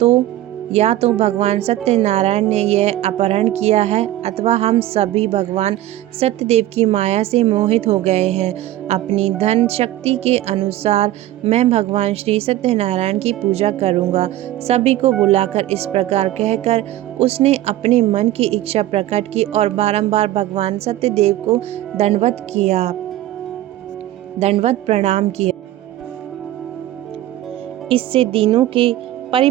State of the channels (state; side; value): quieter; left; 14.4 dB